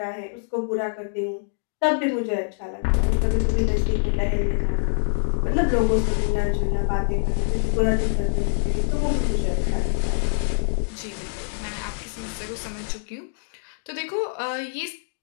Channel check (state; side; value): silent; right; digital silence